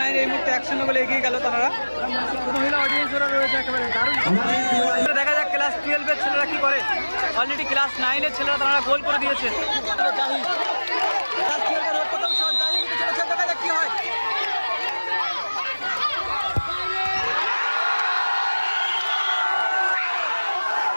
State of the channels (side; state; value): both; inverted; correlation -1.00